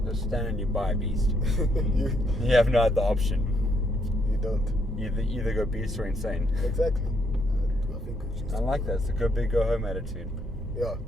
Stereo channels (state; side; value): normal; both; correlation 0.73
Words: The standard you buy a beast. you You have no other option. don't. You either go beast or insane. Exactly. I think we choose. I like that. It's a go big, go home attitude. Yeah.